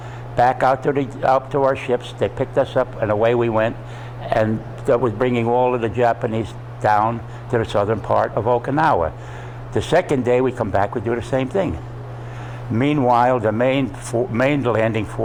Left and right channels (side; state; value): both; identical; correlation 1.00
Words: back out to our ships. They picked us up, and away we went. And that was bringing all of the Japanese down to the southern part of Okinawa. The second day we come back, we do the same thing. Meanwhile, the main landing